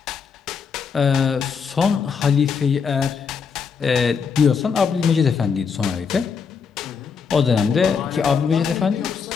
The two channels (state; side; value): quieter; right; 6.0 dB